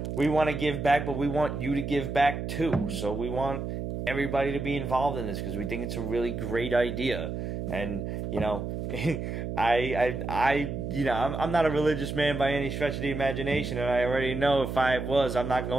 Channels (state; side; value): noise; right; hum, 4 dB below the sound